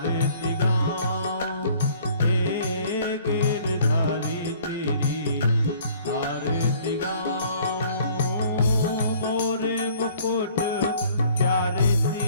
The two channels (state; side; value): inverted; both; correlation -0.56